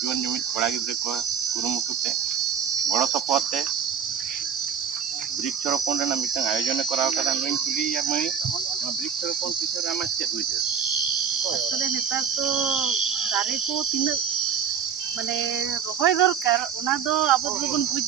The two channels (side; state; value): left; quieter; 7.6 dB